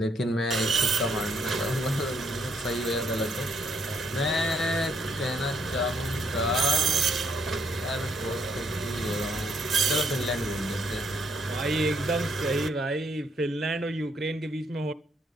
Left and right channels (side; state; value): both; normal; correlation 0.72